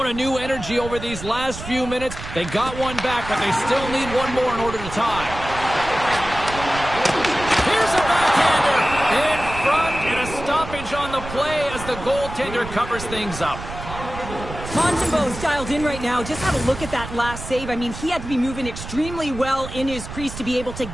a new energy over these last few minutes. They got one back, but they still need one more in order to tie. Here's a backhander in front, and a stoppage on the play as the goaltender covers things up. Montembeau's dialed in right now. Just have a look at that last save. I mean, he had to be moving extremely well in his crease to be able to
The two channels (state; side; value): noise; right; rumble, 10 dB below the sound